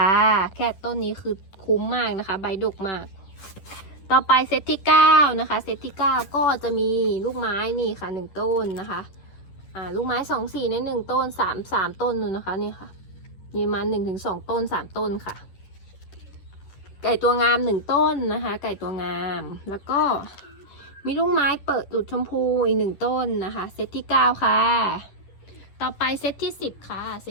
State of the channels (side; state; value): right; late; 10 ms